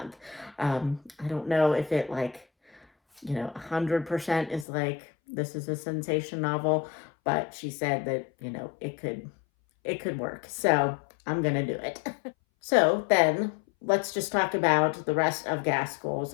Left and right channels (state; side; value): drops out; right; at 4.7 s